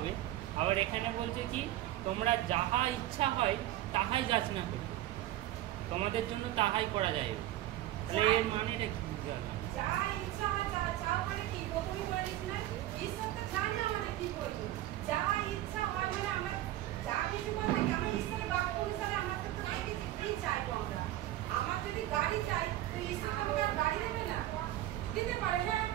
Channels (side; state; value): left; quieter; 14.4 dB